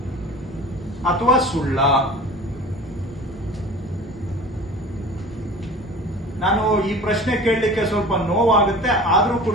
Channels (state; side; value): normal; both; correlation 0.40